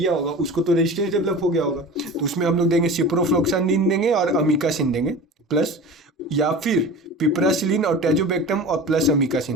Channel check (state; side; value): normal; both; correlation 0.34